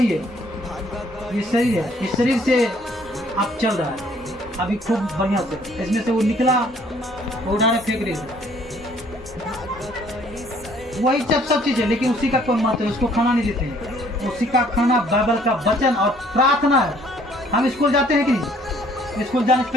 है। ये शरीर है, इस शरीर से आप चल रहा है अभी खूब बढ़िया से, इसमें से वो निकला, वो डायरेक्ट फेंक रही है, वही सब चीज है, लेकिन उसी का कोई महत्व है, उसको खाना नहीं देते हैं। उसी का खाना बाइबल का वचन और प्रार्थना है। हम स्कूल जाते हैं कि नहीं, स्कूल जाने से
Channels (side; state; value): both; normal; correlation 0.61